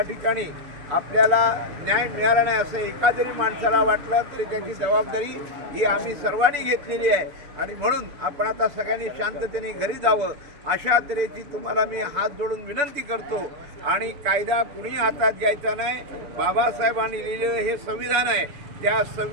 ठिकाणी आपल्याला न्याय मिळाला नाही असं एका जरी माणसाला वाटलं तरी त्याची जबाबदारी ही आम्ही सर्वांनी घेतलेली आहे आणि म्हणून आपण आता सगळ्यांनी शांततेने घरी जावं अशा तऱ्हेची तुम्हाला मी हात जोडून विनंती करतो. आणि कायदा कुणी हातात घ्यायचा नाही. बाबासाहेबांनी लिहिलेलं हे संविधान आहे, त्या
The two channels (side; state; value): left; late; 6.9 ms